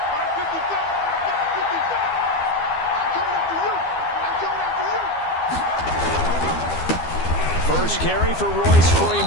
First carry for Royce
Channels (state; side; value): late; right; 12 ms